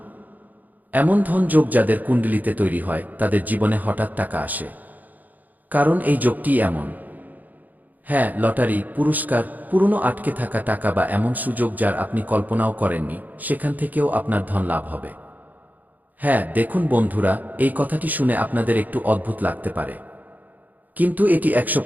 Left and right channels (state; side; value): late; left; 0.082 ms